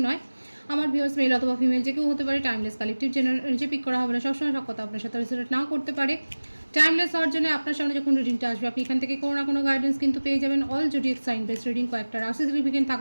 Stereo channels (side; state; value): both; inverted; correlation -1.00